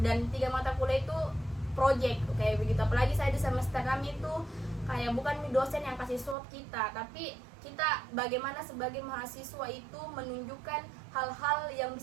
dan 3 mata kuliah itu project kayak begitu. Apalagi saya di semester kami itu kayak bukan dosen yang kasih swab kita, tapi kita bagaimana sebagai mahasiswa itu menunjukkan hal-hal yang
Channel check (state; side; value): drops out; left; at 6.4 s